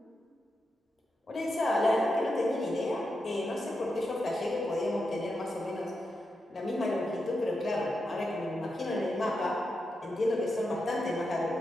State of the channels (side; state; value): both; normal; correlation 0.87